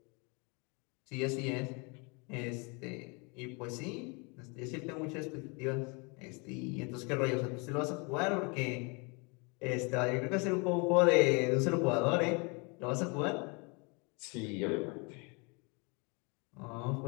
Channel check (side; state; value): right; quieter; 31.5 dB